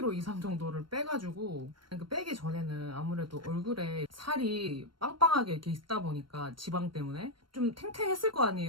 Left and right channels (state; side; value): late; left; 0.72 ms